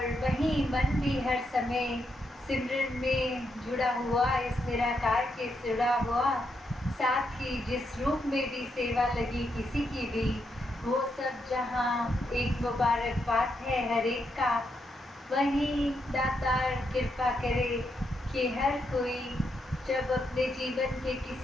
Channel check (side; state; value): both; normal; correlation 0.80